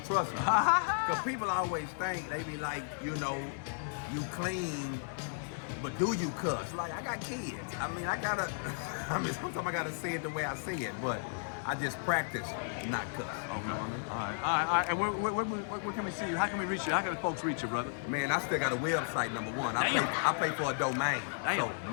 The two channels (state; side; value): silent; right; digital silence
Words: trust me. Because people always think, they be like, you clean, but do you cuss? Like, I got kids. Sometimes I gotta say it the way I say it, but I just practice not cuss. Okay. All right. And where can we see you? How can we reach you? How can the folks reach you, brother? Man, I still got a website, number one. I pay for a domain. Damn. So